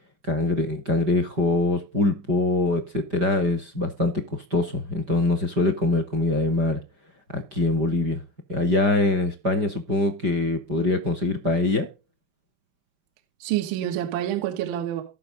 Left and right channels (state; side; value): late; left; 5.0 ms